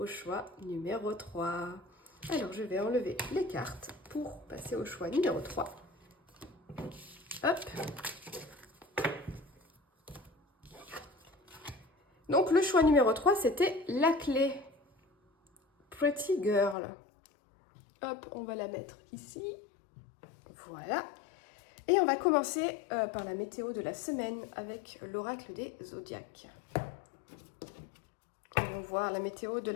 choix numéro 3. Alors, je vais enlever les cartes pour passer au choix numéro 3. Hop. Donc, le choix numéro 3, c'était la clé. Pretty Girl. Hop, on va la mettre ici. Voilà. Et on va commencer par la météo de la semaine avec l'oracle des zodiaques. On va voir la météo de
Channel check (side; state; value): right; drops out; at 16.8 s